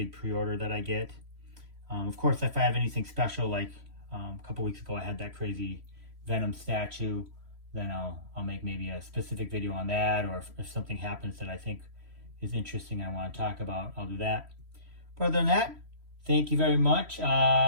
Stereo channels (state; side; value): late; left; 3.1 ms